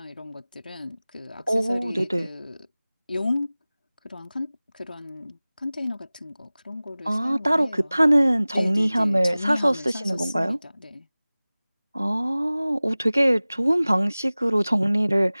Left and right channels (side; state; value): both; inverted; correlation -0.99